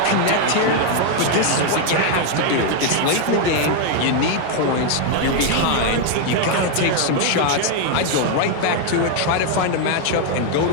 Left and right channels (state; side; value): different; both; correlation 0.00